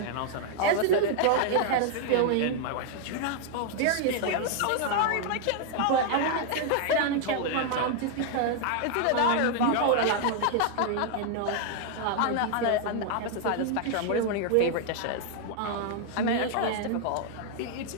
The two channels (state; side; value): different; both; correlation 0.00